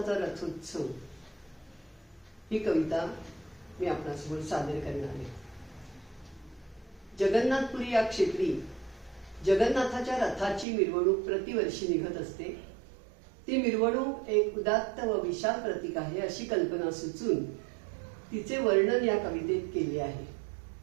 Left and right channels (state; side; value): drops out; left; at 10.7 s